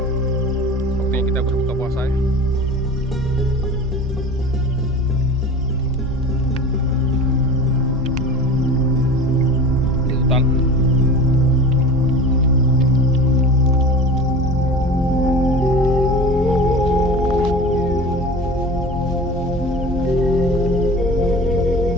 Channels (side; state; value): both; normal; correlation 0.36